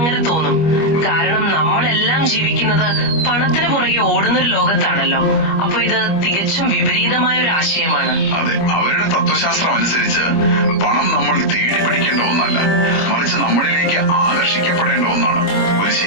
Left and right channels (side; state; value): right; late; 25 ms